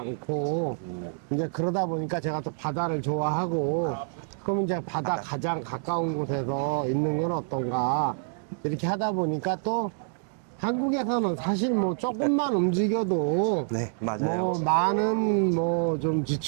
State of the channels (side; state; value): left; silent; digital silence